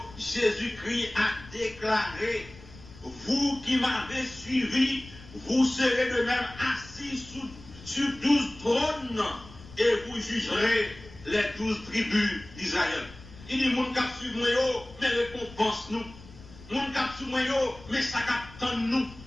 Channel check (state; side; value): noise; left; rumble, 19 dB below the sound